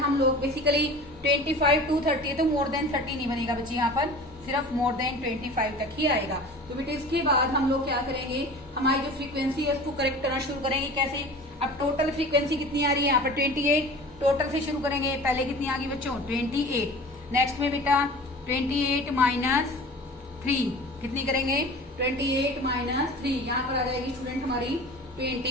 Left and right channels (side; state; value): both; normal; correlation 0.39